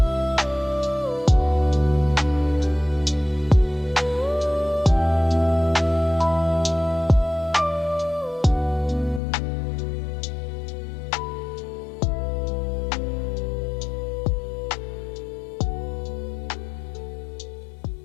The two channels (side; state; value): right; drops out; at 9.2 s